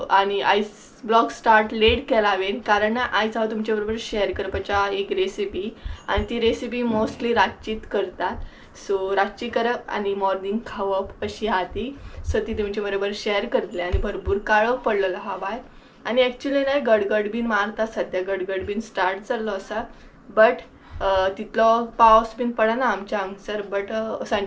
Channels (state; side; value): identical; both; correlation 1.00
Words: आनी आयज ब्लॉग स्टार्ट लेट केला हांवें, कारण आयज हांव तुमचे बरोबर शेअर करपाच्या एक रेसिपी, आनी ती रेसिपी मोस्टली रातचीच करतात. सो रातची करप आनी मॉर्निंग खावप अशी आहा ती. सो ती तुमचे बरोबर शेअर करतले. आनी भरपूर काळोख पडलेलो आहा भायर आनी एक्चुअली नाही गडगड बीन मारता, सद्या गडगड बीन स्टार्ट जाल्लो आसा, बट तितलो पावस बीन पडना आमच्या हांगसर. बट